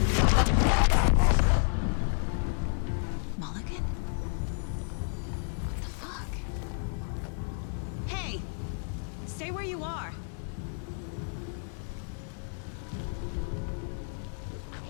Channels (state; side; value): silent; right; 57 dB below the other